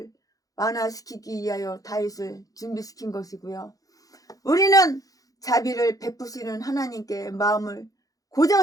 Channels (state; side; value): late; right; 0.17 ms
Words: 완화시키기 위하여 다윗을 준비시킨 것이고요. 우리는 자비를 베푸시는 하나님께 마음을